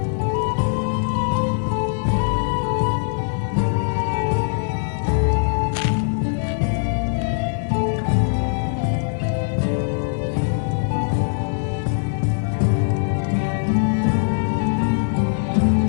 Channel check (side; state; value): right; silent; digital silence